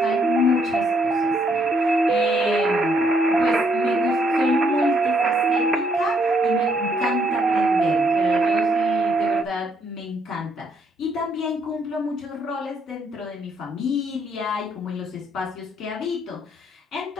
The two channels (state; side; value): normal; both; correlation 0.71